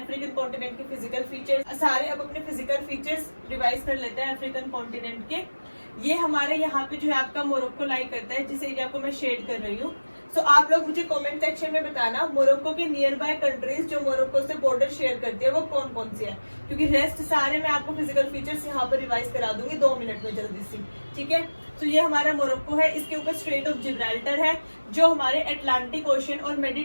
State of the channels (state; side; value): inverted; both; correlation -1.00